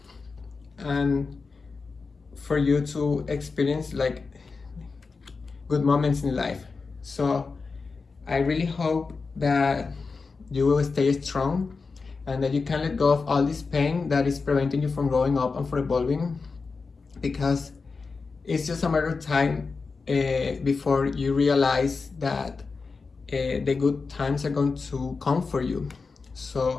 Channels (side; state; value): right; quieter; 4.5 dB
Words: and for you to experience like good moments in life. So I really hope that you will stay strong and that you can let go of all this pain that is preventing you from growing up and from evolving, because it's just a matter of time before you realize that the good times are going to come for you.